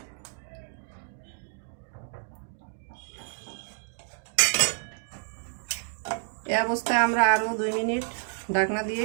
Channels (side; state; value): left; silent; 58 dB below the other